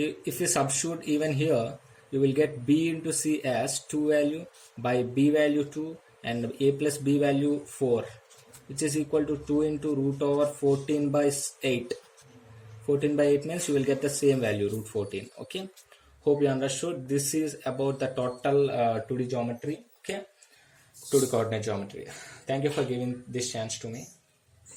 you substitute even here, you will get b into c as 2 value by b value 2 and a plus b value 4, which is equal to 2 into root over 14 by 8. 14 by 8 means you will get the same value, root 14, okay. Hope you understood. This is about the total 2D geometry, okay, 2D coordinate geometry. Thank you for giving this chance to me.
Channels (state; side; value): identical; both; correlation 1.00